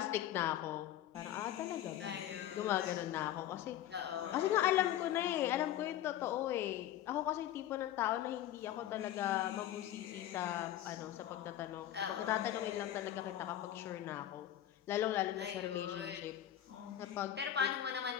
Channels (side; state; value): right; quieter; 12.0 dB